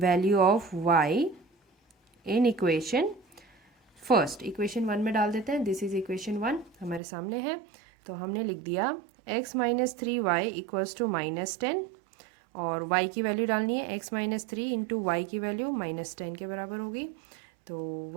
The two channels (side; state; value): left; drops out; at 7.0 s